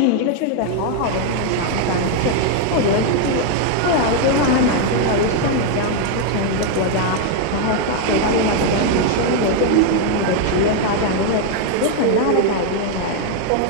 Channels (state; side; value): different; both; correlation 0.00